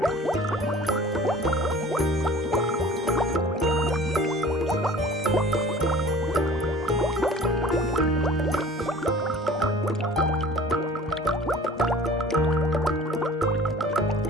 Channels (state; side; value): normal; both; correlation 0.46